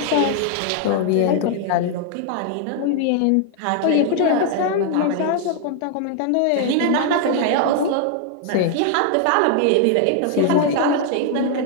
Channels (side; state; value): both; different; correlation 0.00